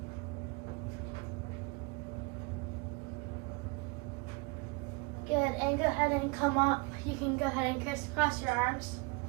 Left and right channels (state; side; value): quieter; left; 28.1 dB